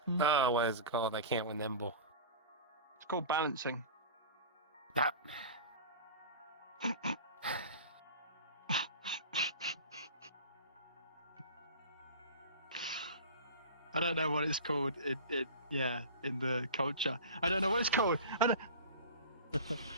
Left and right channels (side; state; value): both; inverted; correlation -0.33